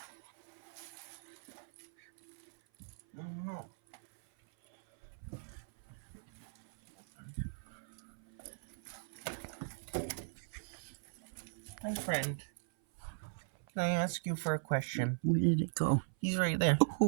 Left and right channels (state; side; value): silent; left; 52 dB below the other